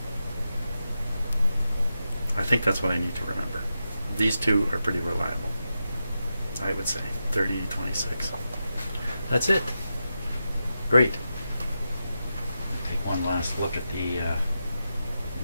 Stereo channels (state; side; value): inverted; both; correlation -0.88